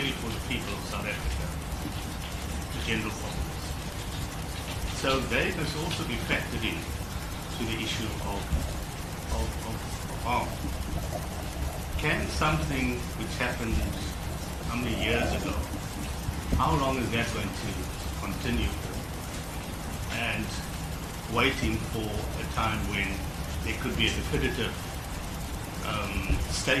for the people of South Africa, the general populace. So they must also be factored in to the issue of harm. Can something which happened how many years ago, how long is that going to continue for? And waiting for a time when there could be a definitive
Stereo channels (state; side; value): identical; both; correlation 1.00